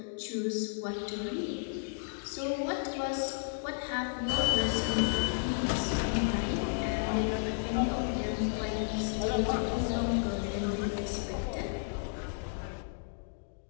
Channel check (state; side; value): silent; right; digital silence